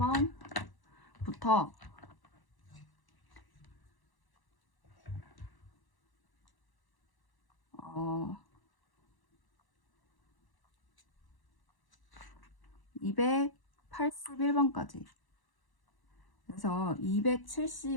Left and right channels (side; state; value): right; late; 1.1 ms